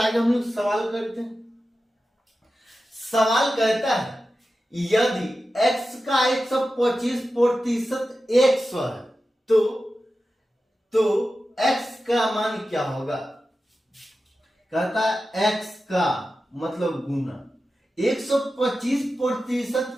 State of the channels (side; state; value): both; normal; correlation 0.93